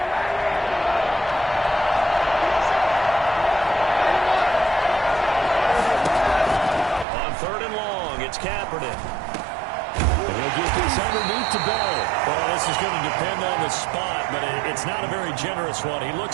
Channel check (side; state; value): left; drops out; at 7.1 s